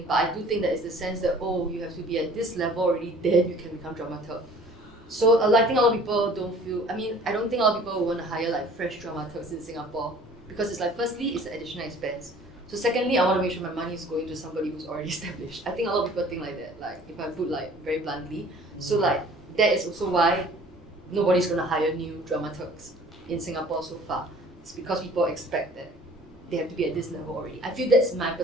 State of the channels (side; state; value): both; normal; correlation 0.50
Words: but I do think that it's the sense that, oh, you have to be at this level already, then you can become dramaturg. So I think a lot of people don't feel, I don't think a lot of people will want to hire like fresh dramaturgs in Singapore, because it's like, firstly, it's an additional expense. So secondly, I want to make sure my money is going to somebody who's already established. I think a lot of people think like that, like if I put like very bluntly. So like that is also why nobody's going to hire new dramaturgs in Singapore so far. It's because people expect that they have to be at this level already. I feel that's my